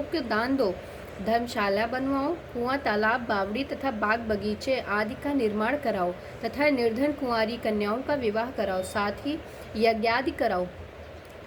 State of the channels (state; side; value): identical; both; correlation 1.00